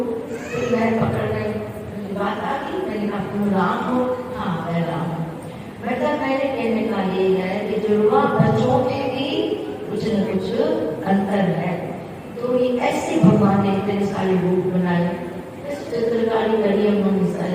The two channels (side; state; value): both; identical; correlation 1.00